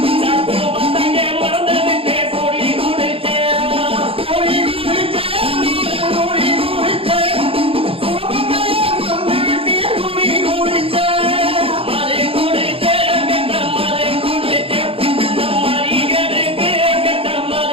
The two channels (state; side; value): late; left; 0.27 ms